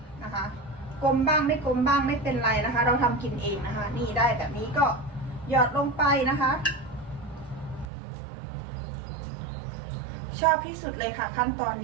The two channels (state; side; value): drops out; left; at 7.9 s